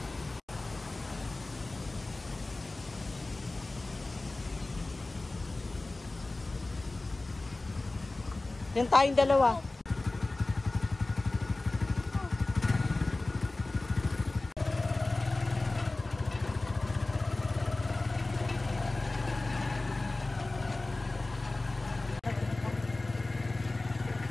Yan tayong dalawa.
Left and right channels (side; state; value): right; quieter; 3.0 dB